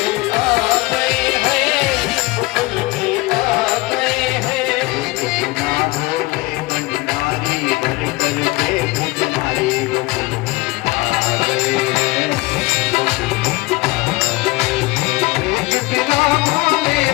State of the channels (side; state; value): right; quieter; 21.6 dB